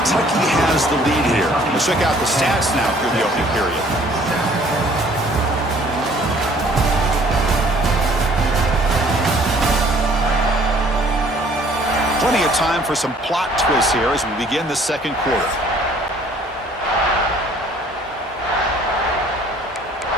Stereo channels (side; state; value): both; normal; correlation 0.57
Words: has the lead here. Let's check out the stats now through the opening period. Plenty of time for some plot twists here as we begin the 2nd quarter.